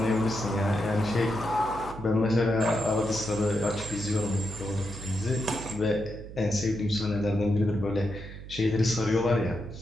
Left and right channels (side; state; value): right; noise; hum, 13 dB below the sound